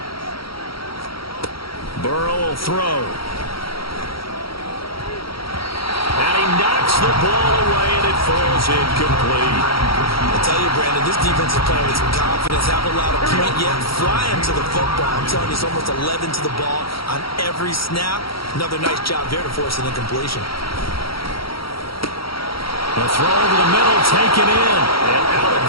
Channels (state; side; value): late; right; 0.75 ms